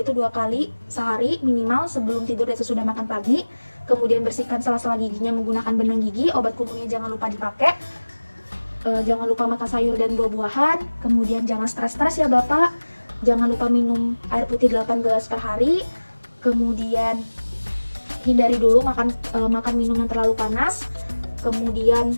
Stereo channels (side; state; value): both; inverted; correlation -1.00